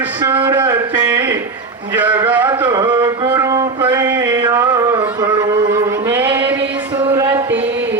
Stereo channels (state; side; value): quieter; left; 3.9 dB